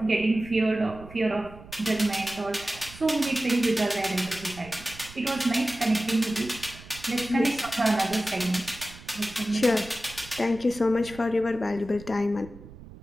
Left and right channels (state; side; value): noise; right; rumble, 18 dB below the sound